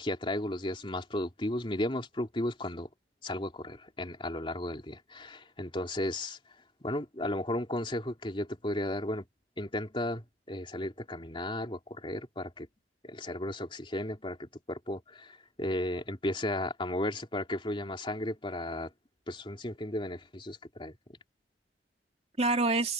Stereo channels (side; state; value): both; normal; correlation 0.49